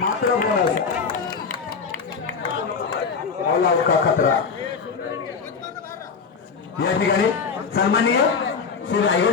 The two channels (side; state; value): right; quieter; 5.5 dB